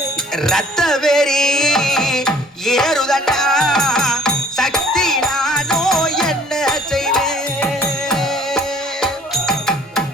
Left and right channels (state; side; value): normal; both; correlation 0.54